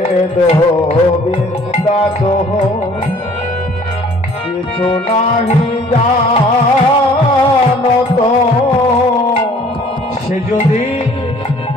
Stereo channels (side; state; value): both; normal; correlation 0.54